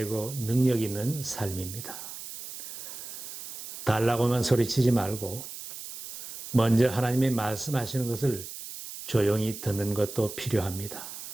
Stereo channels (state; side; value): noise; right; hiss, 11 dB below the sound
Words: 능력 있는 삶입니다. 달라고만 소리치지 말고 먼저 하나님의 말씀하시는 것을 조용히 듣는 것도 필요합니다.